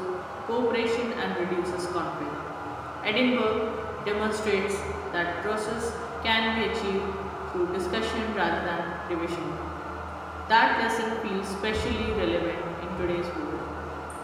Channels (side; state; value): both; identical; correlation 1.00